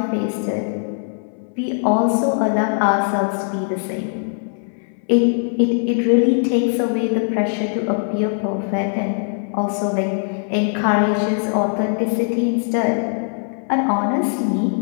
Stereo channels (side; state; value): right; silent; 65 dB below the other